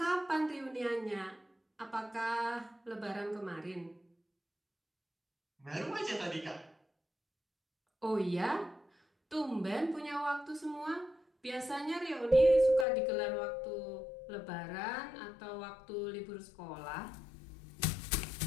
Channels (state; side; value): drops out; right; at 12.9 s